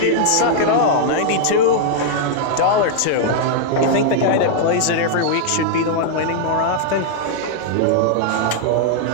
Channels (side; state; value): both; different; correlation -0.01